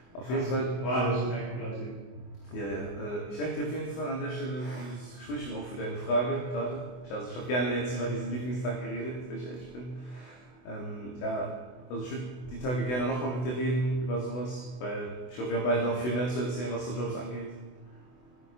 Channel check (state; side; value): late; right; 24 ms